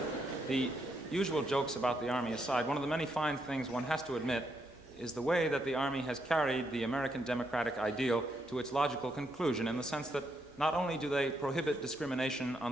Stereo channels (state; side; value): normal; both; correlation 0.78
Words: the usual jokes about the Army aside, one of the many fine things one has to admit is the way that the Army has carried the American democratic ideal to its logical conclusion, in the sense that not only do they prohibit discrimination on